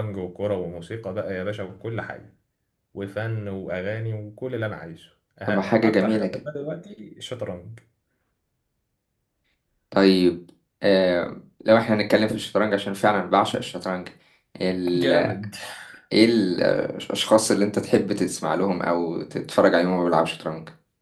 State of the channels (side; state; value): both; identical; correlation 1.00